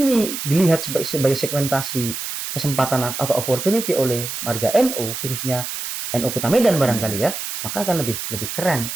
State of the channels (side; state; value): right; noise; hiss, 6 dB below the sound